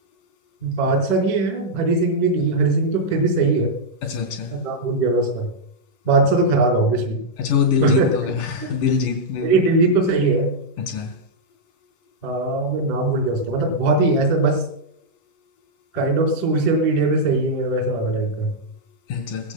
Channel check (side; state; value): right; late; 11 ms